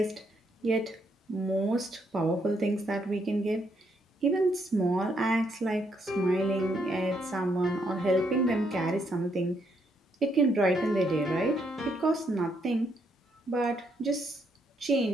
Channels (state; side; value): normal; both; correlation 0.74